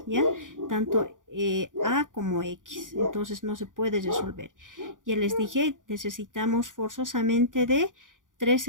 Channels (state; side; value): late; left; 0.88 ms